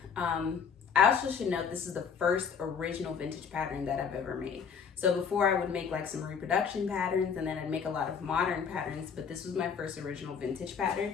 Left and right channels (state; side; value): quieter; right; 6.6 dB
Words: I also should note this is the first original vintage pattern that I've ever made. So before I would make like some reproduction patterns, and then I'd make a lot of modern patterns, but this was my first original vintage pattern.